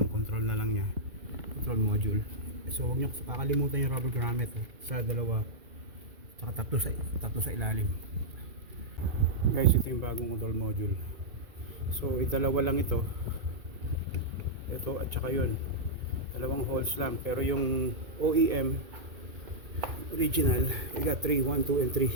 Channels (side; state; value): left; late; 2.0 ms